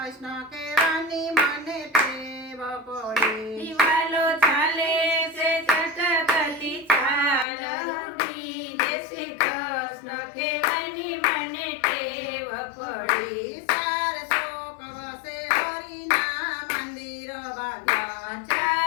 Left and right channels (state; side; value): drops out; right; at 7.5 s